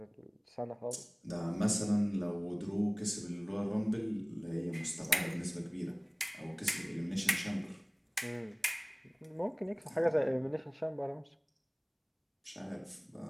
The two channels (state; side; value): identical; both; correlation 1.00